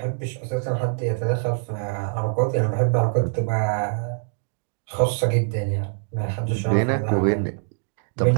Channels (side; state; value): left; silent; digital silence